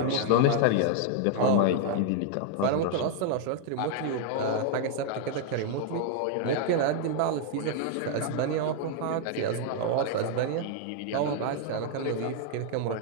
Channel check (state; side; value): different; both; correlation 0.00